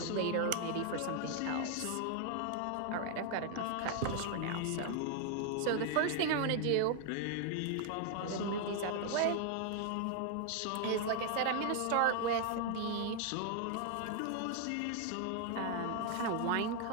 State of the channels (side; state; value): both; different; correlation 0.00